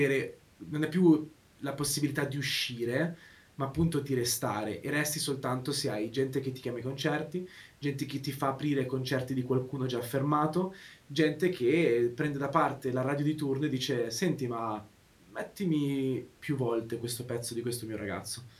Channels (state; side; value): identical; both; correlation 1.00